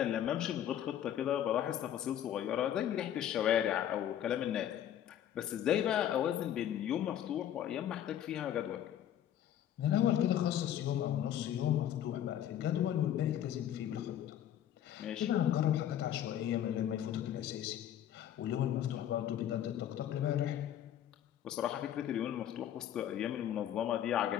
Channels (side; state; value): right; quieter; 10.8 dB